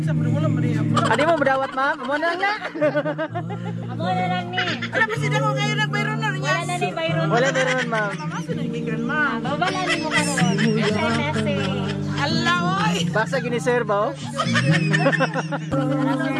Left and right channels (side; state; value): both; identical; correlation 1.00